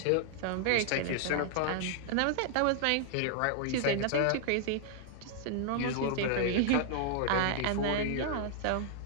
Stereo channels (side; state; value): both; different; correlation 0.00